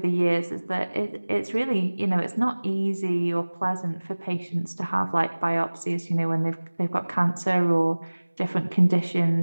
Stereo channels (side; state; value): both; inverted; correlation -1.00